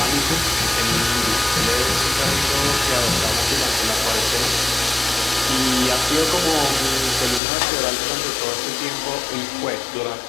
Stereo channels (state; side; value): drops out; right; at 7.4 s